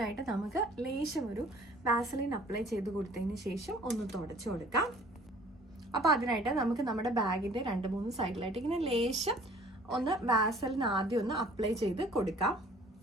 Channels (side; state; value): both; normal; correlation 0.53